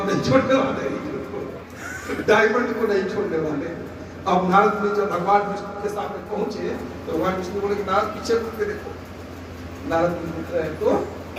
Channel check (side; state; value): both; identical; correlation 1.00